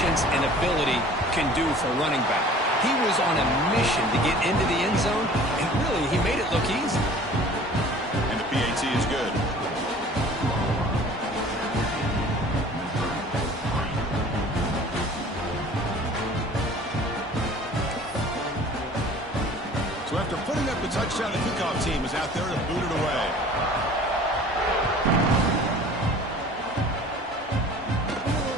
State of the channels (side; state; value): both; normal; correlation 0.47